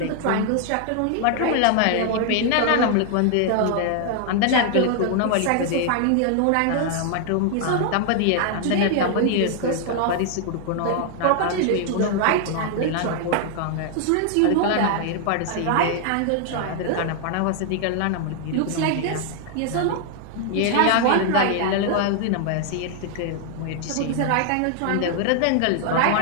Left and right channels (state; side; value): different; both; correlation 0.00